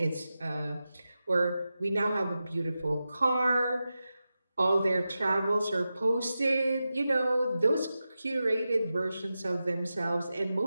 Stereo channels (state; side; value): inverted; both; correlation -0.92